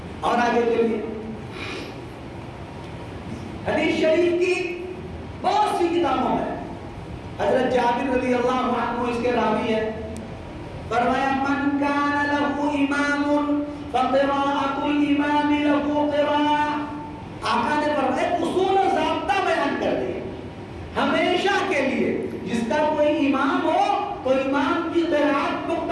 اور آگے چلیے، حدیث شریف کی بہت سی کتابوں میں حضرت جابر رضی اللہ عنہ اس کے راوی ہے، فرمایا من کان له امام فقراءۃ الامام له قراءۃ. آقا نے فرمایا اصول و ضابطہ بیان کر دیا ہمیشہ کے لیے، جس کا کوئی امام ہو تو امام کی قرات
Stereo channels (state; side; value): identical; both; correlation 1.00